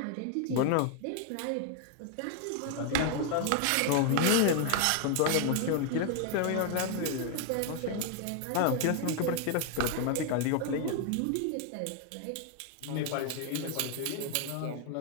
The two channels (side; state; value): both; different; correlation 0.00